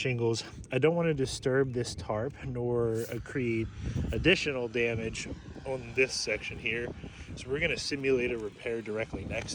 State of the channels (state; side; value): identical; both; correlation 1.00